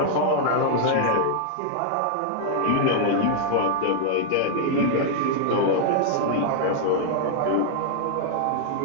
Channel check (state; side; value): different; both; correlation -0.01